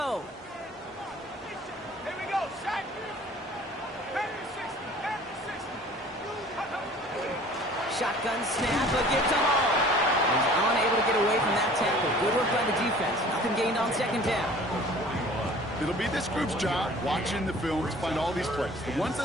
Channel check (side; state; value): both; normal; correlation 0.48